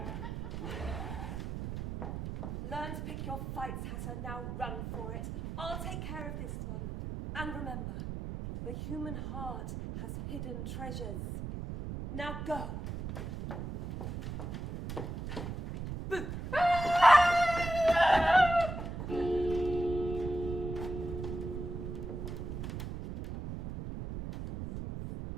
Learn to pick your fights, Hatter. Now run for it. I'll take care of this one. And remember, the human heart has hidden treasures. Now go. Boo!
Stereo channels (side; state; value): right; noise; rumble, 6 dB below the sound